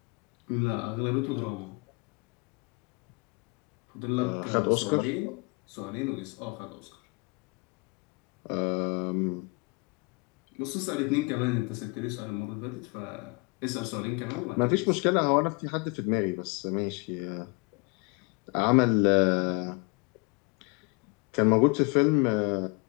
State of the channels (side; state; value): right; quieter; 30.6 dB